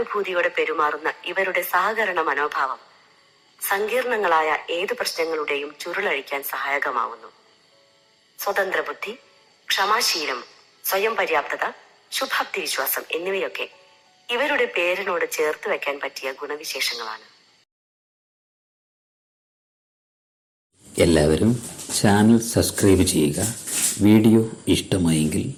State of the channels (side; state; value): both; identical; correlation 1.00